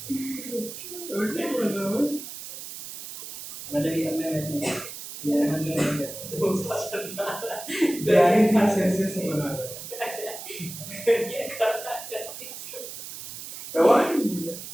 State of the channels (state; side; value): noise; right; hiss, 11 dB below the sound